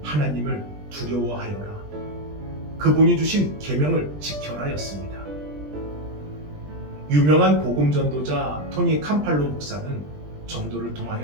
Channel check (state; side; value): late; left; 20 ms